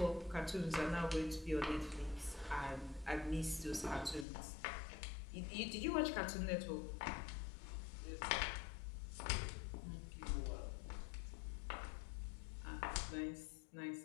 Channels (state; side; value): drops out; right; at 4.2 s